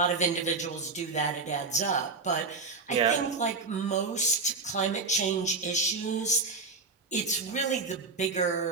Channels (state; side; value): quieter; left; 4.1 dB